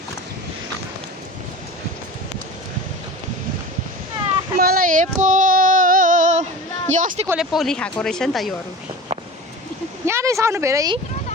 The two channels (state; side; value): normal; both; correlation 0.34